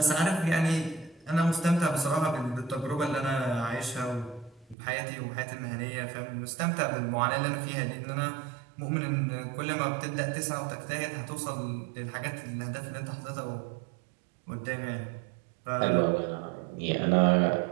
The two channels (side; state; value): left; drops out; at 4.8 s